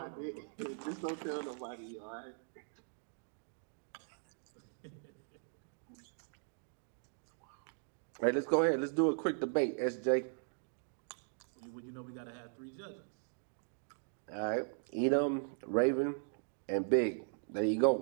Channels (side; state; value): left; silent; digital silence